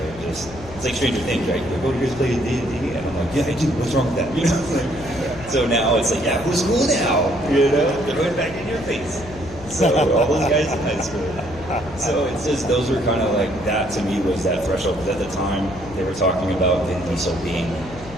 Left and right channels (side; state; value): left; noise; hum, 17 dB below the sound